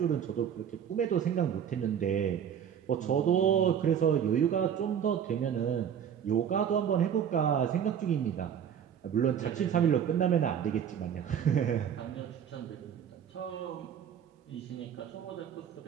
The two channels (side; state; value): left; quieter; 8.6 dB